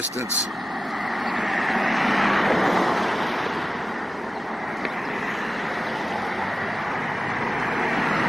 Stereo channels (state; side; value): normal; both; correlation 0.95